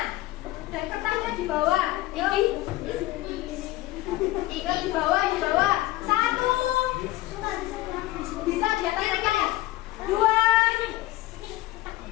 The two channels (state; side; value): quieter; right; 17.8 dB